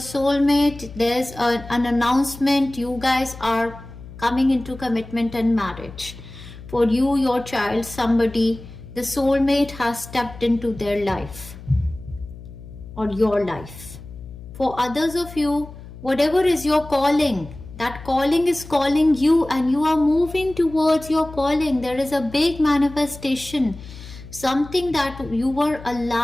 There's an announcement. You guys are coming into commitment and marriage. For you, your child, somebody, the soulmate has stepped into their life or your life. For others of you, whatever is your calling, that calling is calling you and you are moving towards your calling. There is a big manifestation, something that you were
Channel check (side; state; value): left; noise; hum, 15 dB below the sound